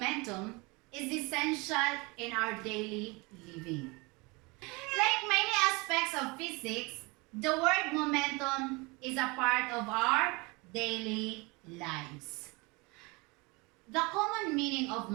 is essential in our daily living. Like many aspects of physics, the word momentum is a part of our daily lives. The common meaning of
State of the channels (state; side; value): quieter; left; 26.4 dB